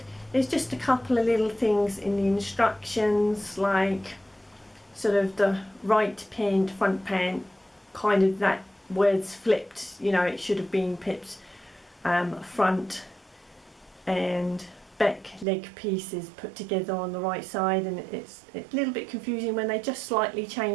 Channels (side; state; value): left; drops out; at 15.5 s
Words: There's just a couple of little things in the instructions, like sort of the right pant, front pant, kind of that word's flipped, you know, it should have been pips front and back leg pieces put together on the right side, and it's a little bit confusing when they just slightly